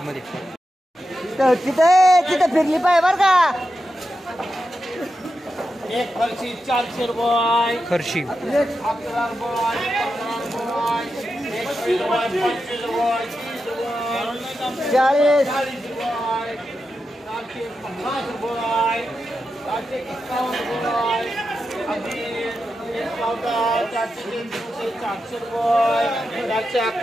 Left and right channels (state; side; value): normal; both; correlation 0.89